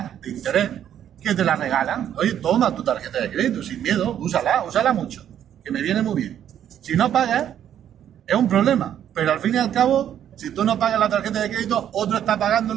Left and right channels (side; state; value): left; quieter; 10.1 dB